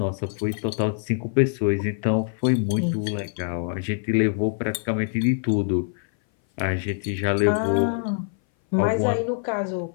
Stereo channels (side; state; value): right; silent; 58 dB below the other